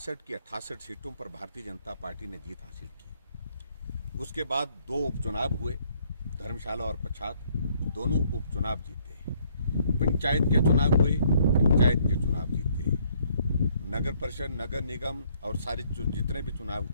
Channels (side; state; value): both; inverted; correlation -0.66